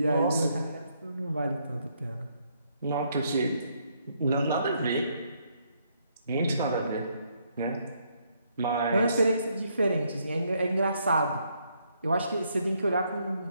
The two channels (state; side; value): inverted; both; correlation -0.73